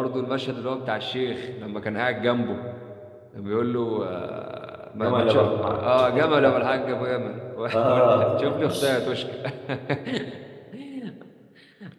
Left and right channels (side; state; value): both; identical; correlation 1.00